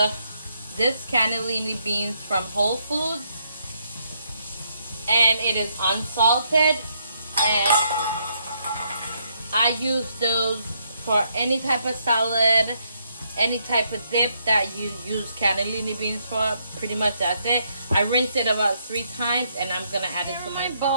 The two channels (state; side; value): inverted; both; correlation -0.74